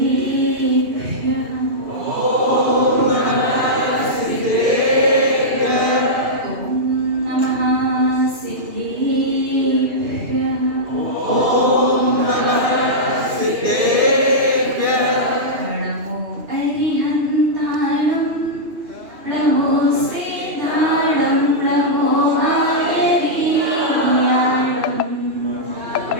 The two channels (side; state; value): left; late; 2.8 ms